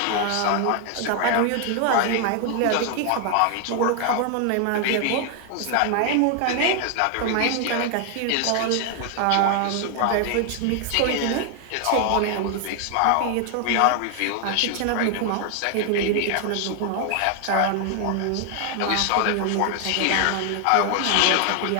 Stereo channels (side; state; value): both; different; correlation 0.00